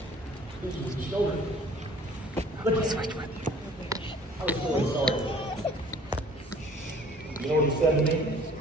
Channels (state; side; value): normal; both; correlation 0.52